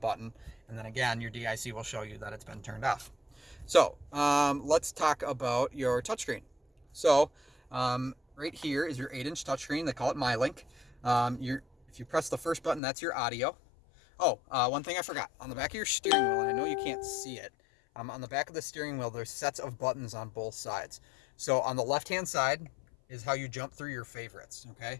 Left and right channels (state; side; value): drops out; right; at 12.8 s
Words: And then again, your DIC will show you that it's been turned off. So let's talk about your touchscreen. So right here is your 8-inch touchscreen. They call it MyLink. If you press the first button, that's your audio. Oh, one thing I forgot. On the back of your steering wheel, and I know you can't see it, on the back of the steering wheel, there's sets of buttons on both sides. So on the left-hand side is how you jump through your favorites, okay?